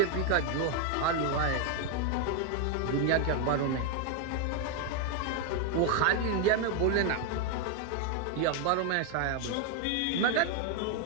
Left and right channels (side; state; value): both; different; correlation 0.01